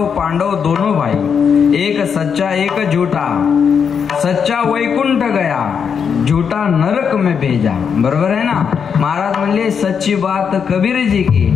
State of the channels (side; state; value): right; quieter; 6.8 dB